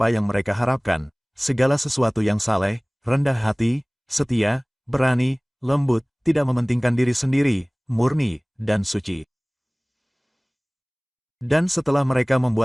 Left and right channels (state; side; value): identical; both; correlation 1.00